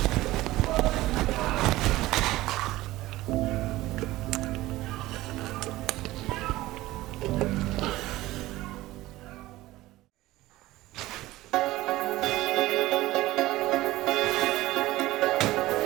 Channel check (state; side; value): quieter; left; 17.5 dB